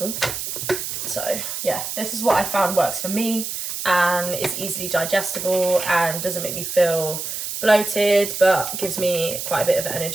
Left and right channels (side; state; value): right; noise; hiss, 5 dB below the sound